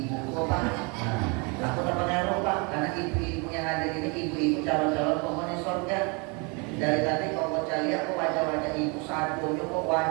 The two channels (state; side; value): quieter; left; 31.4 dB